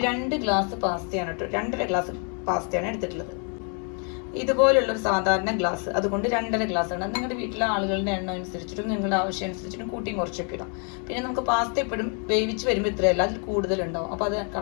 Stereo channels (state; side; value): quieter; right; 39.7 dB